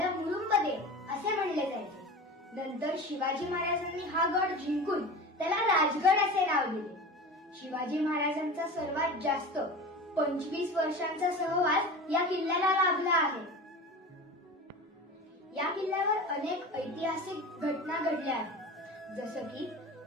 मुरुंबदेव असे म्हणले जायचे। नंतर शिवाजी महाराजांनी हा गड जिंकून त्याला राजगड असे नाव दिले। शिवाजी महाराजांचा सर्वात जास्त 25 वर्षांचा सहवास या किल्ल्याला लाभला आहे। या किल्ल्यावर अनेक ऐतिहासिक घटना घडल्या आहेत, जसं की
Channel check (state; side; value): normal; both; correlation 0.32